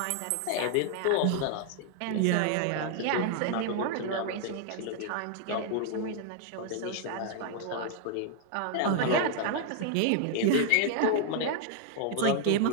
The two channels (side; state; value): both; different; correlation 0.00